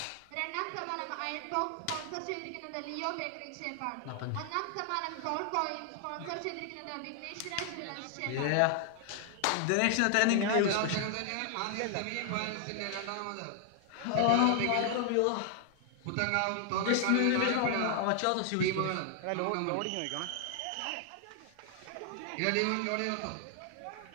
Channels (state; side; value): different; both; correlation 0.00